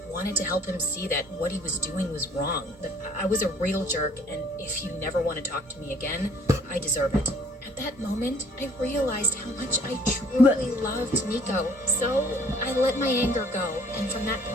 wanted to help him see that what he was doing was wrong. That I was a real jerk, and if you never want to talk to me again, I deserve it. At that moment, I realized how much I truly loved Nico. So I let my anger go, and from that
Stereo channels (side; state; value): both; normal; correlation 0.58